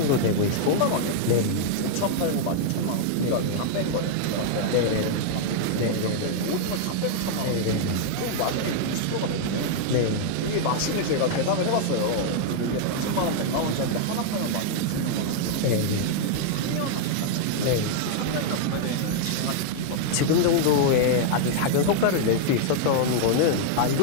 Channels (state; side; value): different; both; correlation -0.01